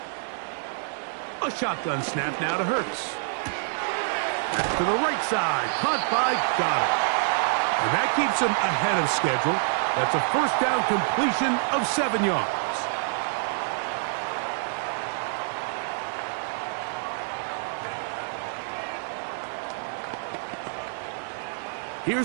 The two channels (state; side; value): silent; left; digital silence